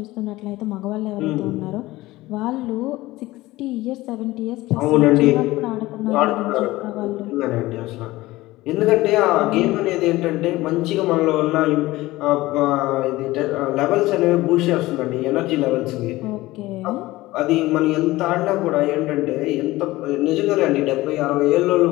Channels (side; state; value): right; quieter; 18.4 dB